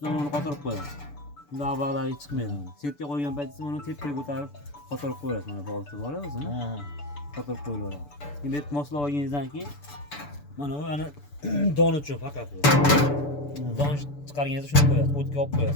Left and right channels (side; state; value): right; late; 6.9 ms